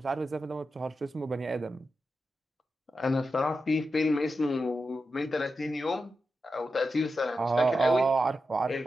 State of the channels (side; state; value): both; normal; correlation 0.89